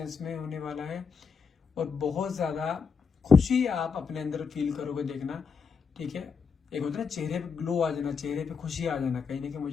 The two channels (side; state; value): right; quieter; 5.7 dB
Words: में होने वाला है। और बहुत ज्यादा खुशी आप अपने अंदर फील करोगे, देखना। ठीक है, एक होता है ना चेहरे पे ग्लो आ जाना, चेहरे पे खुशी आ जाना, कहीं ना कहीं